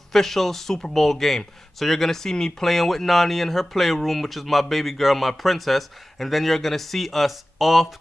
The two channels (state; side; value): normal; both; correlation 0.96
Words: Super Bowl game. So you're going to see me playing with Nani in her playroom, which is my baby girl, my princess. And then you're going to see us